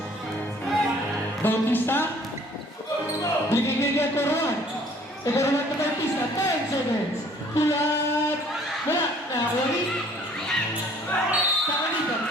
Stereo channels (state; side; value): normal; both; correlation 0.56